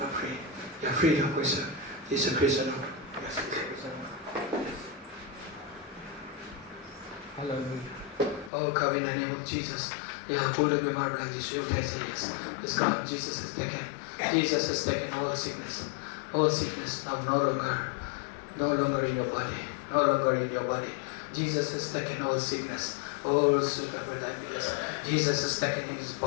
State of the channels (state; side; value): drops out; right; at 8.5 s